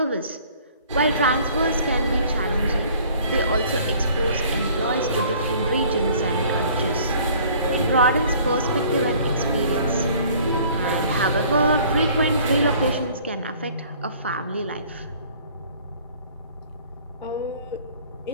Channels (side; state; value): both; inverted; correlation -0.54